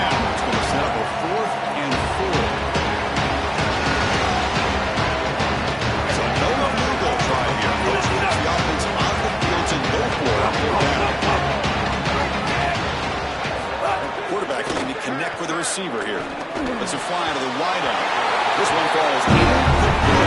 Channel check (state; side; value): identical; both; correlation 1.00